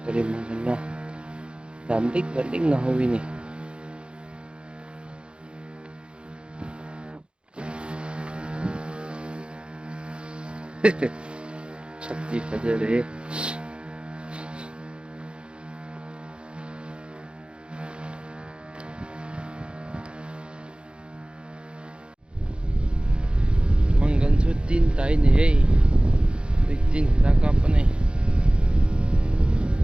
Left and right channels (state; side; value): late; left; 0.055 ms